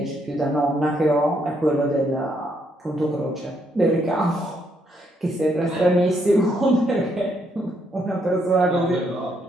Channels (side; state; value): both; normal; correlation 0.74